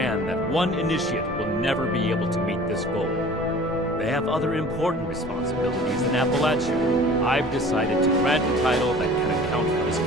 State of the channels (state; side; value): normal; both; correlation 0.45